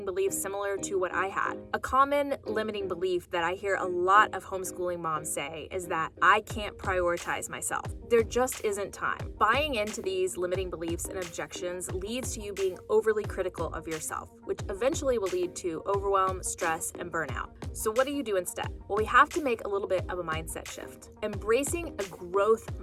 beliefs similar to what I had. A common limiting belief that I hear a lot of homeschooling moms say is that I can't prioritize myself. There just isn't time. Buying into these limiting beliefs and objections leads to you being overly critical of yourself, which eventually will lead to overwhelm, stress, and burnout. So what do you do instead? Well, we have to make a little bit of a mindset shift. Embracing a growth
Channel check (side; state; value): both; identical; correlation 1.00